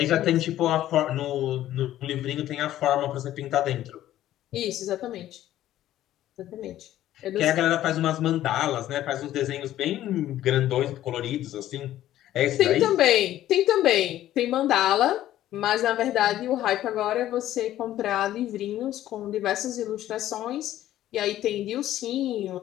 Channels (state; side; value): quieter; right; 13.2 dB